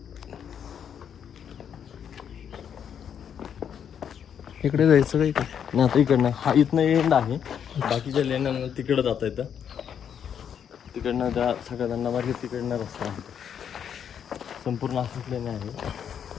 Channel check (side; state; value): right; quieter; 8.3 dB